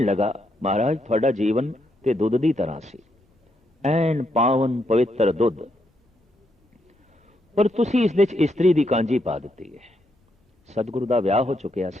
लगा, महाराज तुहाडा जीवन ते दुध दी तरह सी, ऐन पावन पवित्र दुध, पर तुसी इस विच स्त्री दी कांजी पा दित्ती है। सतगुरु दा विआह हो चुकिया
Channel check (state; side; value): normal; both; correlation 0.78